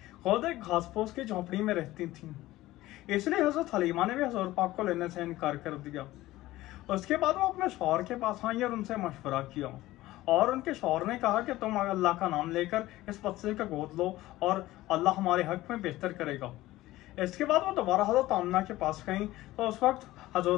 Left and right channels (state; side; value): quieter; right; 16.9 dB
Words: खुद एक घास फूस की झोंपड़ी में रहती थी। इसलिए हजरत हलीमा ने भी हजूर पाक को लेने से इनकार कर दिया। उसके बाद वो अपने शौहर के पास आई और उनसे मशवरा किया और उनके शौहर ने कहा कि तुम अल्लाह का नाम लेकर इस बच्चे का गोद लो और अल्लाह हमारे हक में बेहतर करेगा। इसके बाद वो दोबारा हजरत आमना के पास गई तो उस वक्त